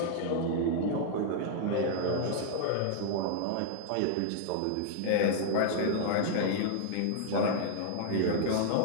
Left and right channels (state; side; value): different; both; correlation -0.01